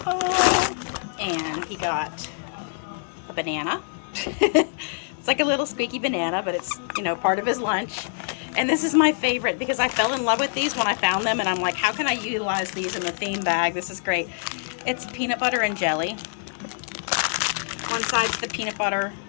And he got a banana. It's like a little squeaky banana, but it's, you know, part of his lunch. And this is my favorite because I fell in love with these when I found them, and I'm like, how can I utilize these in the theme bag? This is great. It's peanut butter and jelly. One side's the peanut butter,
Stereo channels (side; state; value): right; silent; digital silence